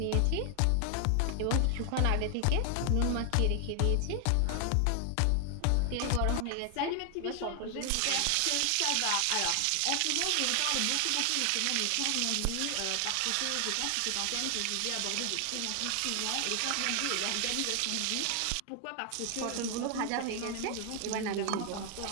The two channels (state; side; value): different; both; correlation 0.00